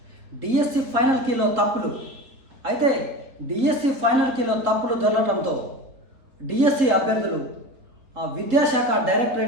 డిఎస్సి ఫైనల్ కీలో తప్పులు. అయితే డిఎస్సి ఫైనల్ కీలో తప్పులు దొరకడంతో డిఎస్సి అభ్యర్థులు విద్యాశాఖ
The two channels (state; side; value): late; left; 3.8 ms